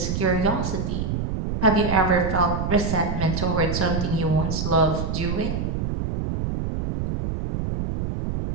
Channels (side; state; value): right; noise; rumble, 2 dB below the sound